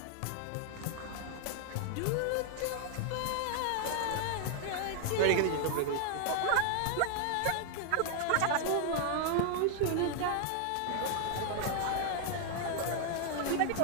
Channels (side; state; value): both; different; correlation 0.00